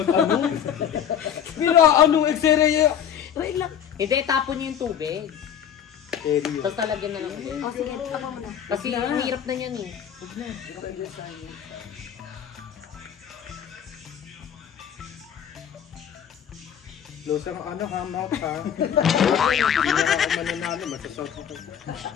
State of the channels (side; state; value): right; quieter; 8.9 dB